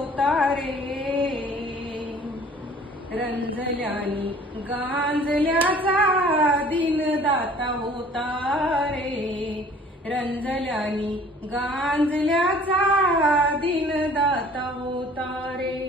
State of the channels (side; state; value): both; normal; correlation 0.51